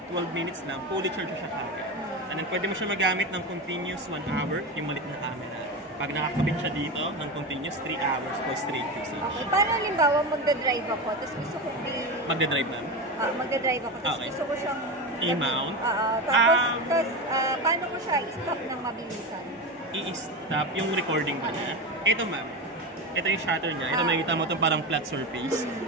12 minutes lang, fully charge siya kagad. And then pwede mo siya magamit ng continuous 1 hour, yung malit na camera. Pag nakakabit siya dito ng continuous 3 hours for straight usage. Okay, paano halimbawa magdadrive ako, tapos gusto ko Magdadrive na? magdadrive ako, tapos Okay. gusto ko siyang I-mount? tapos paano ko siya i-stop ng mabilisan? I-stop yung recording ba niya. Ito ma'am, ito yung shutter niya. Ito makikita mo itong parang flat surface.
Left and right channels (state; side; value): normal; both; correlation 0.20